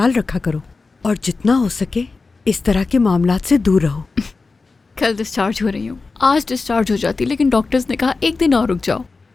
रखा करो और जितना हो सके इस तरह के मामलात से दूर रहो। कल डिस्चार्ज हो रही हूँ, आज डिस्चार्ज हो जाती, लेकिन डॉक्टर्स ने कहा एक दिन और रुक जाओ।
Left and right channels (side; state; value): right; quieter; 4.0 dB